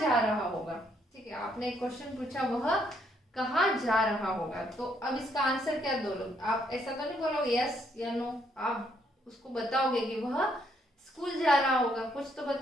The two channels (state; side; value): normal; both; correlation 0.71